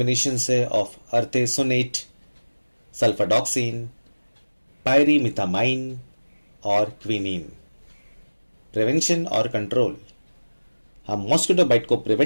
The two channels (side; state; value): both; inverted; correlation -1.00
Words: है ऑफ अर्थेसोनेट, सल्फाडॉक्सिन, पायरीमिथामाइन और क्विनीन। प्रिवेंशन और कंट्रोल, हम मॉस्किटो बाइट को